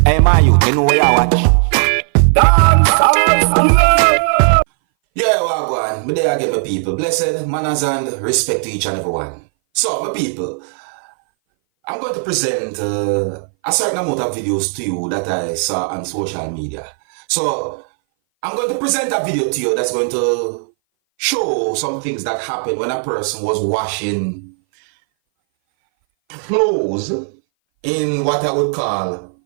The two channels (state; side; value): silent; left; 60 dB below the other